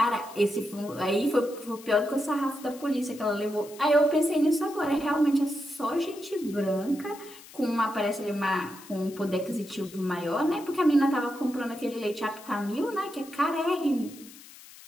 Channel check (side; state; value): left; noise; hiss, 19 dB below the sound